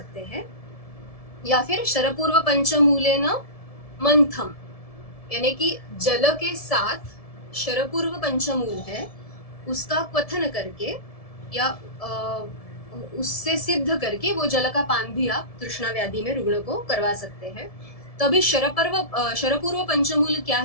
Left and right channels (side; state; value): right; late; 1.7 ms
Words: हैं। या फिर शरपूर्व पंचमूलेन मंथम, यानी कि जल के साथ शरपूर्व पंचमूल है उसका क्वथन करके या उससे सिद्ध करके वो जल का पान भी आप तृष्णा व्याधि में रुग्ण को करवा सकते हैं। तो अभी शरपूर्व पंचमूल क्या